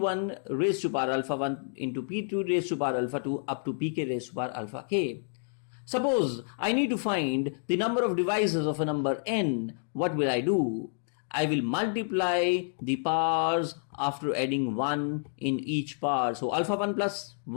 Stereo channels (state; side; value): silent; right; digital silence